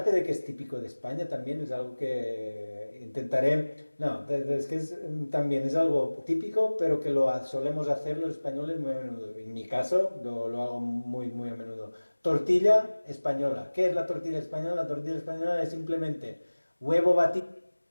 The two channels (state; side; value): inverted; both; correlation -1.00